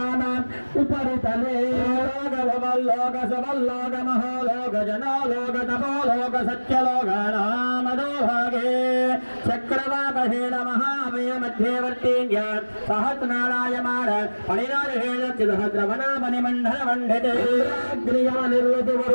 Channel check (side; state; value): both; inverted; correlation -1.00